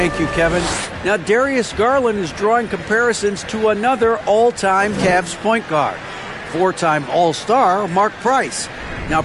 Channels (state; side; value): identical; both; correlation 1.00